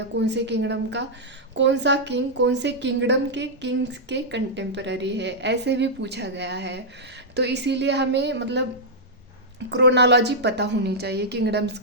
कौन से किंगडम का कौन सा किंग कौन से किंगडम के किंग्स के कंटेम्पररी है, ऐसे भी पूछा गया है। तो इसीलिए हमें मतलब क्रोनोलॉजी पता होनी चाहिए किंगडम्स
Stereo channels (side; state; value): both; normal; correlation -0.07